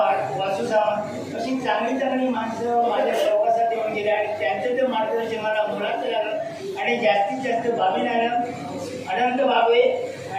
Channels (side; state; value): both; identical; correlation 1.00